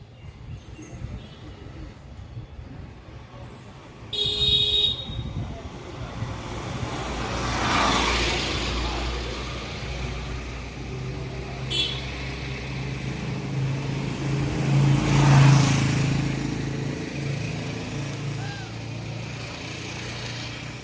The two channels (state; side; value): identical; both; correlation 1.00